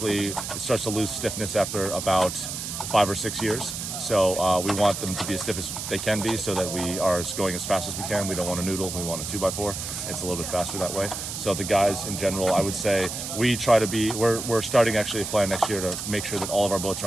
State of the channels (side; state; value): right; noise; hiss, 6 dB below the sound